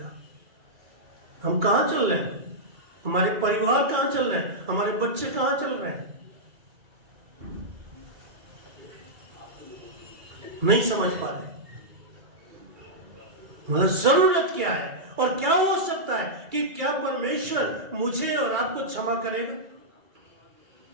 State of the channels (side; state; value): left; late; 2.3 ms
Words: हम कहां चल रहे हैं? हमारे परिवार कहां चल रहे हैं? हमारे बच्चे कहां चल रहे हैं? नहीं समझ पा रहे। मतलब जरूरत क्या है और क्या हो सकता है कि क्या परमेश्वर मुझे और आपको क्षमा करेगा?